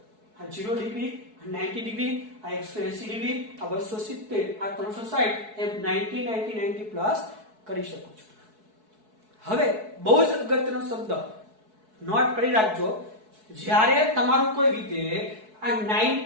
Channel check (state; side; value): late; left; 4.6 ms